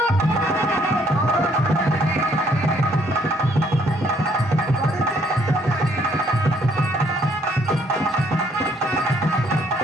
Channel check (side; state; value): both; normal; correlation 0.66